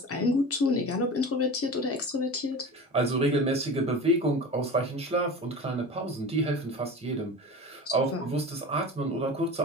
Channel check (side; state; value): both; normal; correlation 0.33